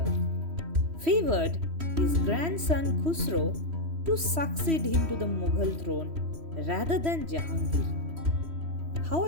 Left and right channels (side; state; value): left; late; 3.1 ms